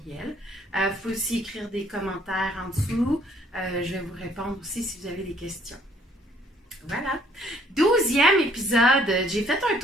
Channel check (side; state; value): both; normal; correlation 0.62